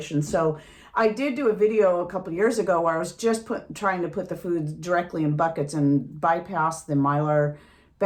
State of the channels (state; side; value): identical; both; correlation 1.00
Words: So I did do a video a couple years ago where I was just trying to put the food directly in buckets and bypass the Mylar